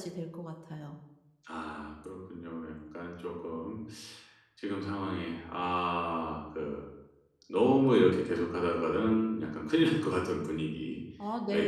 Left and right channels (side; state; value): both; identical; correlation 1.00